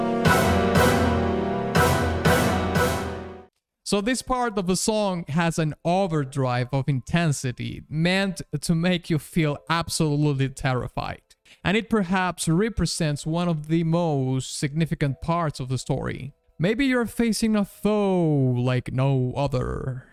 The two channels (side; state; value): both; identical; correlation 1.00